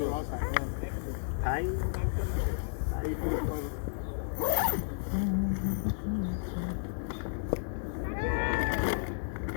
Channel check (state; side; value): silent; right; digital silence